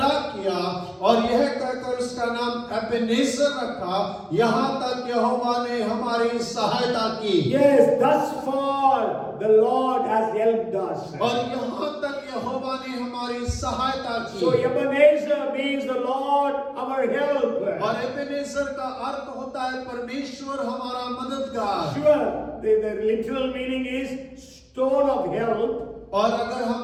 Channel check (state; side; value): identical; both; correlation 1.00